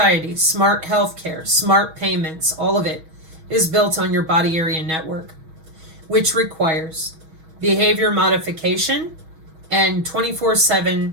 smart healthcare, smart payments, all of it is built on your body area network, which requires behavior modification and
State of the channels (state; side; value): late; left; 6.3 ms